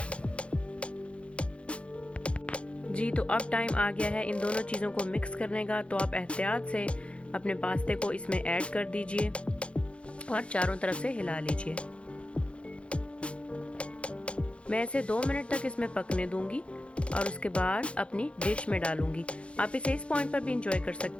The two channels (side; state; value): right; late; 0.060 ms